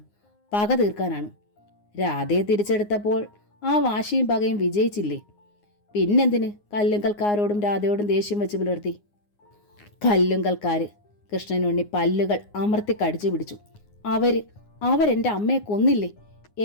പക തീർക്കാനാണ്. രാധയെ തിരിച്ചെടുത്തപ്പോൾ ആ വാശിയും പകയും വിജയിച്ചില്ലേ? പിന്നെന്തിന് കല്ലുങ്കൽക്കാരോടും രാധയോടും ദേഷ്യം വെച്ച് പുലർത്തി? കല്ലുങ്കൽക്കാര്. കൃഷ്ണനുണ്ണി പല്ലുകൾ അമർത്തി കടിച്ചു പിടിച്ചു. അവരെൻ്റെ അമ്മയെ കൊന്നില്ലേ?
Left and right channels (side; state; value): right; late; 9.6 ms